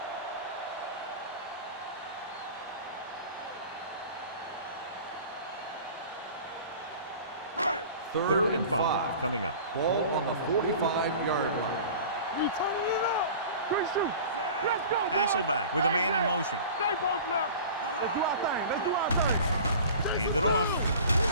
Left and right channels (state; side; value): inverted; both; correlation -0.40